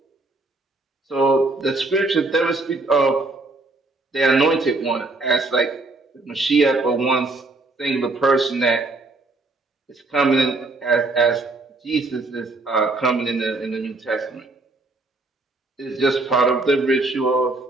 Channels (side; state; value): left; quieter; 3.2 dB